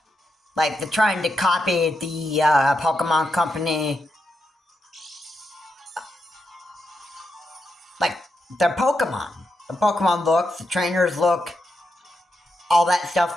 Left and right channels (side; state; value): both; normal; correlation 0.85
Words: Like, they're trying to copy the Pokemon company, like, their Pokemon. The Pokemon looks, the trainers look, all that